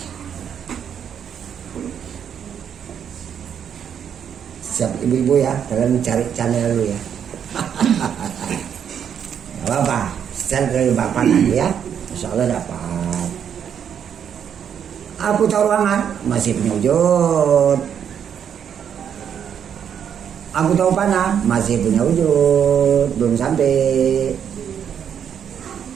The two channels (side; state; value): left; quieter; 8.3 dB